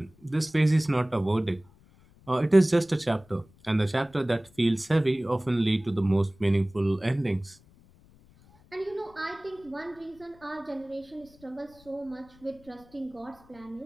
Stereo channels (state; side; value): noise; left; rumble, 27 dB below the sound